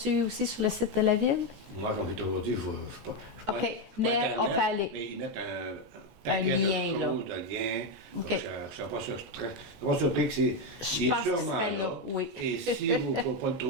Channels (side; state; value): left; late; 21 ms